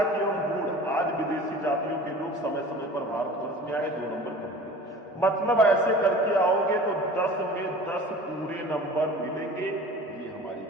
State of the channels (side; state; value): both; normal; correlation 0.42